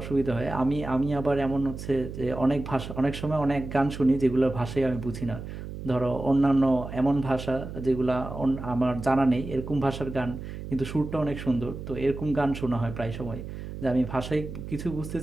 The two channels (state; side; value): noise; right; hum, 9 dB below the sound